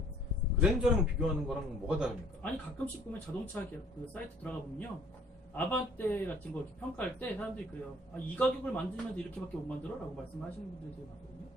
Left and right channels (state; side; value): normal; both; correlation 0.57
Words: 그랜저랑 비교하는 거랑 뭐가 다릅니까? 아니 가끔씩 보면 자동차 그 사이트 들어가 보면요, 아반떼 같은 거 이렇게 평가할 때 사람들이 그래요. 이 가격을 만들면서 이렇게밖에 못 만들어? 라고 말씀하시는 분들이 되게 많거든요.